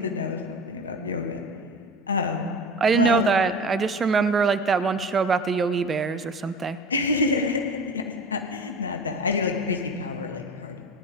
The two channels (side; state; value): both; normal; correlation 0.33